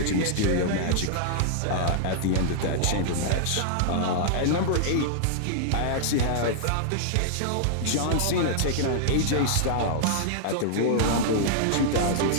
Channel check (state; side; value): different; both; correlation -0.01